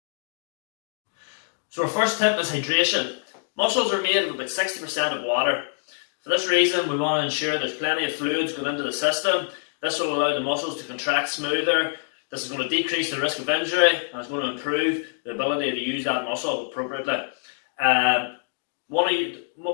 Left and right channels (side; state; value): right; silent; digital silence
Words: So our first tip is hydration. Muscles are made of about 60% of water. For this reason, we want to ensure there's plenty of fluids going into the system. This will allow the muscles to contract smoother. This is going to decrease the risk of injury and it's going to improve the ability to use that muscle appropriately.